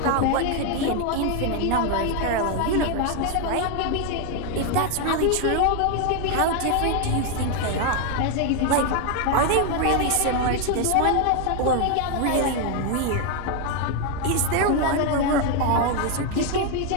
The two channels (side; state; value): both; different; correlation 0.01